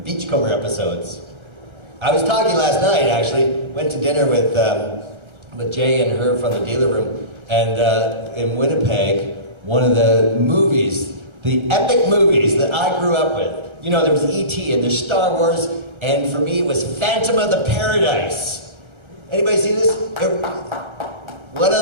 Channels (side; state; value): left; late; 1.3 ms